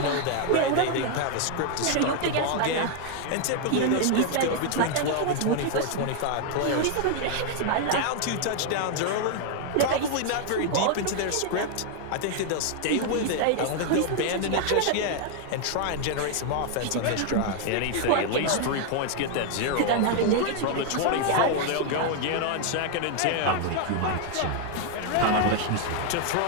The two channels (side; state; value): both; different; correlation 0.00